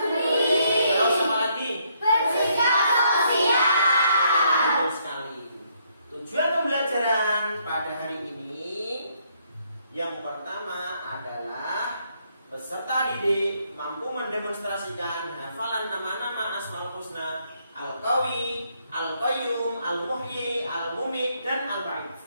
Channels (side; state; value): both; inverted; correlation -0.72